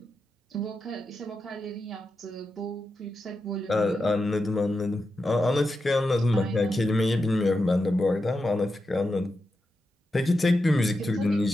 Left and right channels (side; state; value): both; normal; correlation 0.88